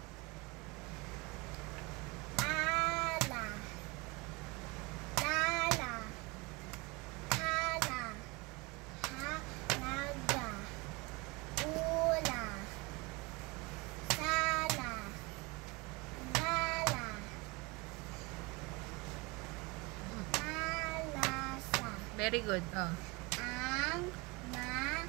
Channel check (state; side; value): quieter; left; 25.6 dB